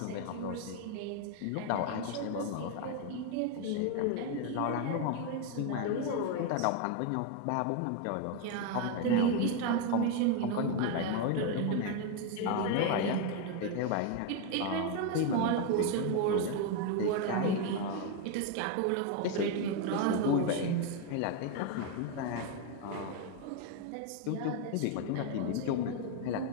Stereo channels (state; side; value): different; both; correlation 0.01